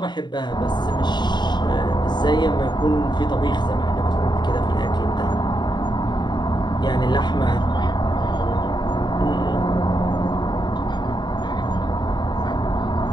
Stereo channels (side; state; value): right; late; 0.21 ms